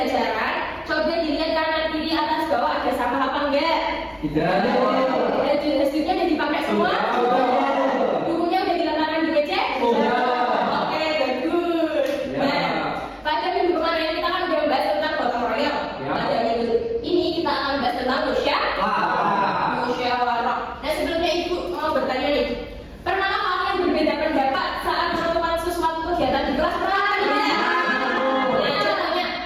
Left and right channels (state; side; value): identical; both; correlation 1.00